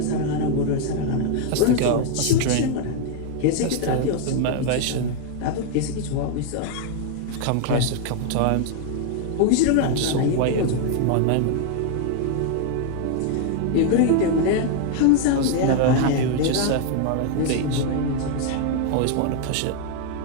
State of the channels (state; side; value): different; both; correlation 0.00